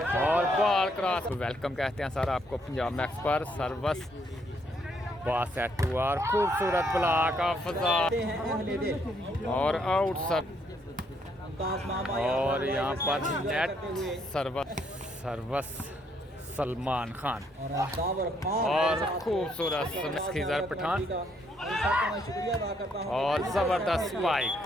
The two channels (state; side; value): normal; both; correlation 0.71